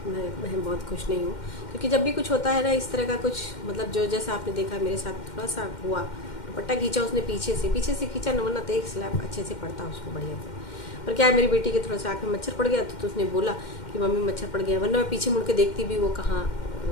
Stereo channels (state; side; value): late; right; 2.1 ms